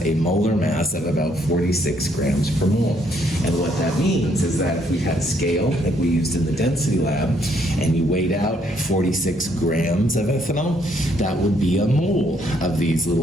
a molar mass of about 46 grams per mole. And what that means is that if we had a scale like we used in the density lab, and you weighed out 46 grams of ethanol, that would be a mole of these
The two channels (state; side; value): normal; both; correlation 0.70